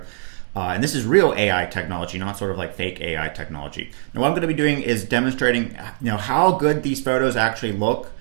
And this is real AI technology, not sort of like fake AI technology. Now, what I'm going to be doing is demonstrating, how good these photos actually look,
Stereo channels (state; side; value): silent; left; digital silence